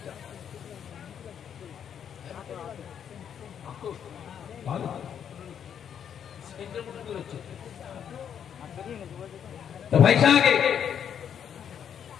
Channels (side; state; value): right; quieter; 8.5 dB